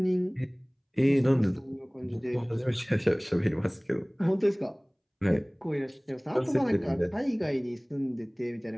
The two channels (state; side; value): identical; both; correlation 1.00